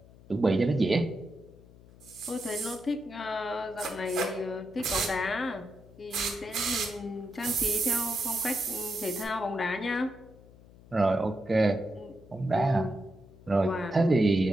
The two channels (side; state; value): left; noise; hum, 23 dB below the sound